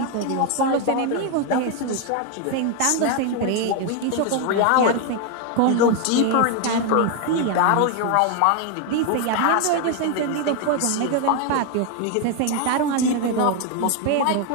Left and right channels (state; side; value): different; both; correlation 0.01